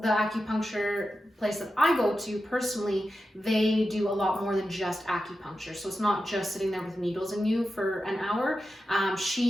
the acupuncture place that I go to personally, they do a lot more than just acupuncture. So it's not just sitting there with needles in you for an hour.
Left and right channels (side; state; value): both; normal; correlation 0.91